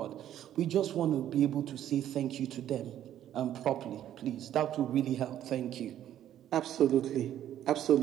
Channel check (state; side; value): quieter; left; 11.4 dB